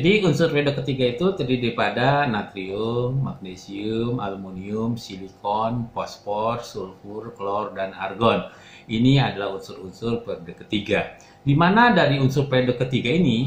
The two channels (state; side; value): identical; both; correlation 1.00